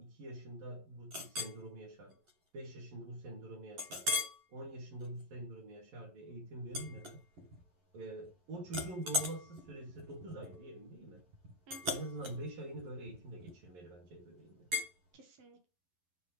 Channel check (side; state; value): left; late; 11 ms